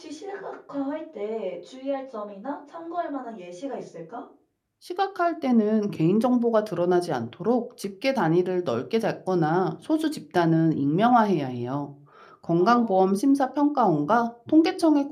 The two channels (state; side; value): identical; both; correlation 1.00